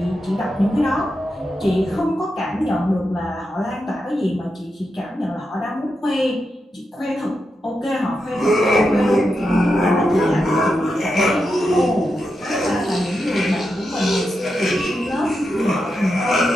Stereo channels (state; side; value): normal; both; correlation 0.87